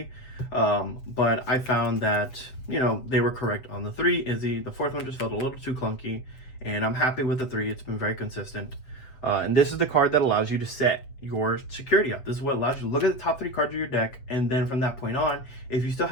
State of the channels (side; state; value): right; late; 7.6 ms